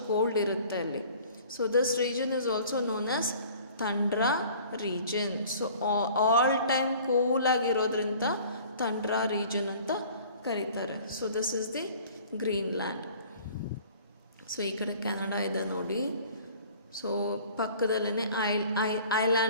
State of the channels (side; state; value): both; inverted; correlation -0.49